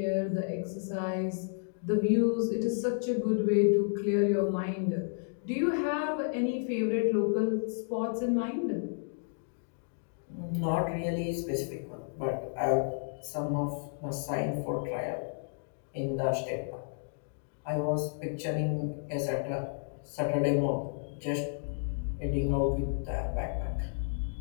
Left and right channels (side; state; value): right; silent; digital silence